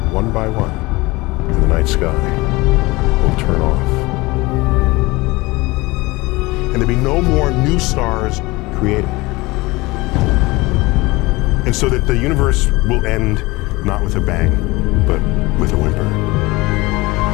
one by one, in the night sky will turn off. And there'll be no more new stars created. And so that the universe will end not with a bang, but with a whimper.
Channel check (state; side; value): quieter; right; 22.1 dB